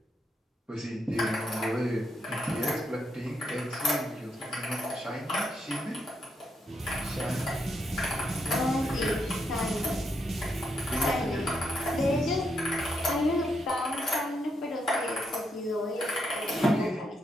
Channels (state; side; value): normal; both; correlation 0.79